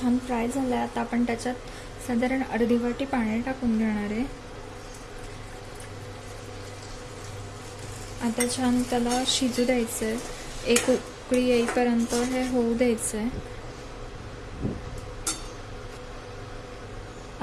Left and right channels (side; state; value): both; identical; correlation 1.00